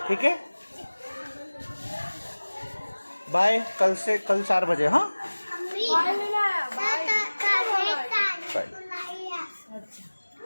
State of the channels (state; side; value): inverted; both; correlation -1.00